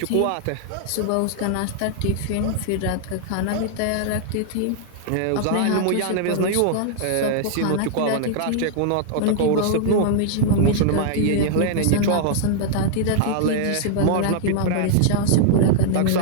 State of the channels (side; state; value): both; different; correlation -0.01